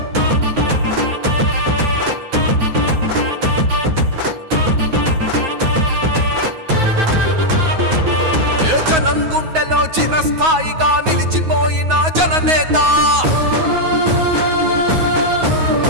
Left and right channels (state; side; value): late; left; 9.5 ms